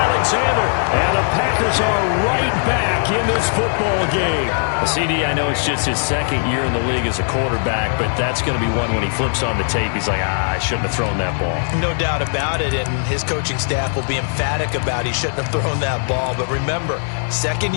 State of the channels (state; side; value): silent; right; 62 dB below the other